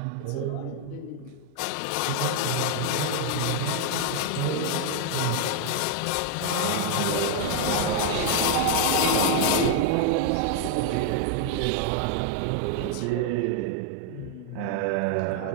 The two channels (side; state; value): both; different; correlation 0.00